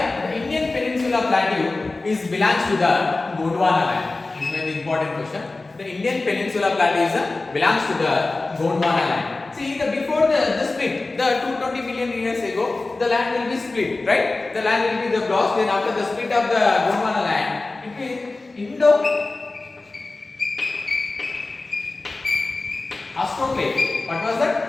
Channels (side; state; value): right; quieter; 3.3 dB